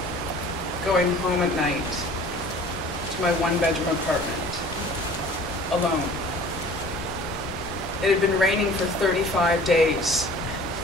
going home at night to my one-bedroom apartment, alone. It had been raining for 35 days.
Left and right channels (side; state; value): both; normal; correlation 0.47